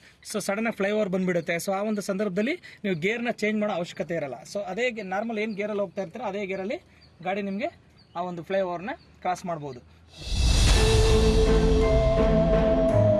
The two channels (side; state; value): both; identical; correlation 1.00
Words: ಸೊ ಸಡನ್ನಾಗಿ ಫ್ಲೈಓವರ್ ಬಂದುಬಿಡುತ್ತೆ. ಸೊ ಆ ಒಂದು ಸಂದರ್ಭದಲ್ಲಿ ನೀವು ಗೇರ್ನ ಚೇಂಜ್ ಮಾಡೋ ಅವಶ್ಯಕತೆ ಇರಲ್ಲ. ಸೊ ಅದೇ ನಾರ್ಮಲ್ ಏನು ಗೇರಲ್ಲಿ ಹೋಗ್ತಾ ಇರ್ತೀರೋ ಅದೇ ಗೇರಲ್ಲಿ ಗಾಡಿ ನಿಮಗೆ ಆ ಒಂದು ಫ್ಲೈಓವರ್ನ ಕ್ರಾಸ್ ಮಾಡ್ಬೋದು.